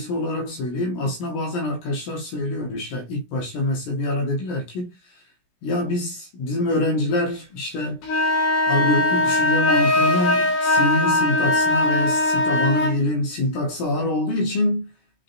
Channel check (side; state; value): right; late; 17 ms